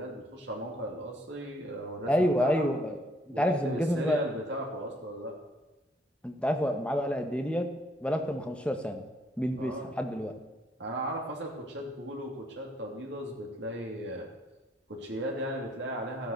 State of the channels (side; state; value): both; normal; correlation 0.67